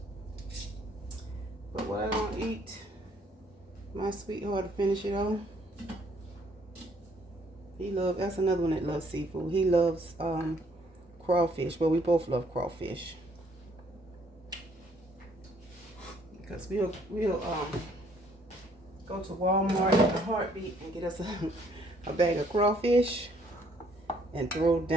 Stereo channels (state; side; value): normal; both; correlation 0.65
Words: But what I don't eat, my sweetheart to finish it on. That's another one that loves seafood. He loves crawfish. Well, we both love crawfish. Because we'll go to Walmart in a heartbeat and get us a bag of crawfish and throw